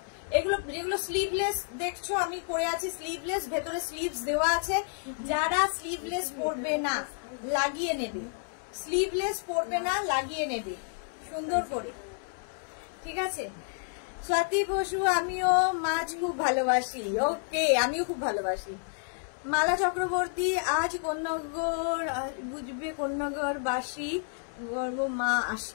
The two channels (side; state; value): right; silent; 58 dB below the other